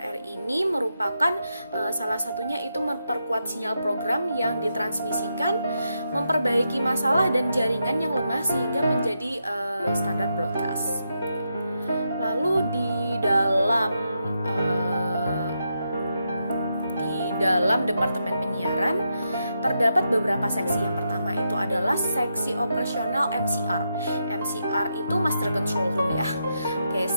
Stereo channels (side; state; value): both; inverted; correlation -0.83